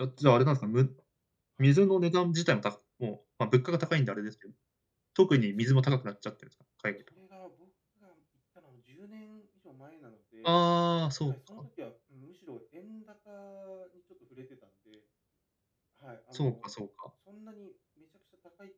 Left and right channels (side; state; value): both; identical; correlation 1.00